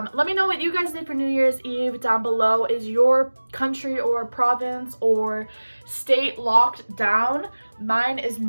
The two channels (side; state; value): both; inverted; correlation -1.00